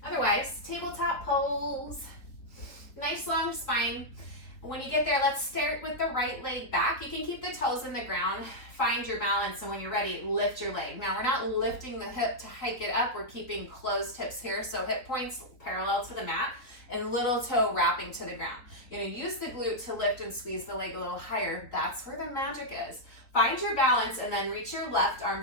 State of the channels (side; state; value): right; late; 4.0 ms